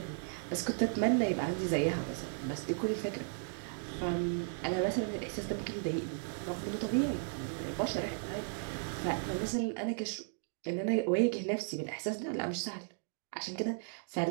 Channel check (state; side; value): silent; left; digital silence